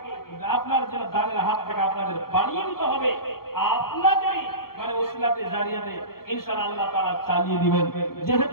আপনার জন্য দানের হাতটাকে আপনাদের বাড়িয়ে দিতে হবে। আপনাদেরই মানে ওসিলাতে জারিয়াতে ইনশাআল্লাহ আল্লাহ তাআলা চালিয়ে দিবেন,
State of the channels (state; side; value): late; right; 0.93 ms